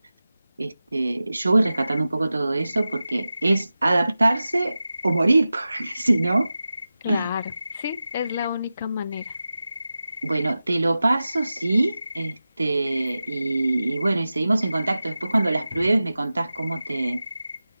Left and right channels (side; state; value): both; inverted; correlation -0.94